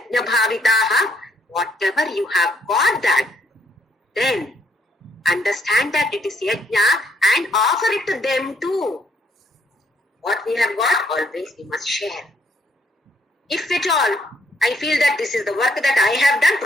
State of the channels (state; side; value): normal; both; correlation 0.70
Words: bhavitaha. Whatever you have got that, then understand that it is yajna and offer it to them too. What we have got, always we must share. If at all I feel that this is the work that I have done.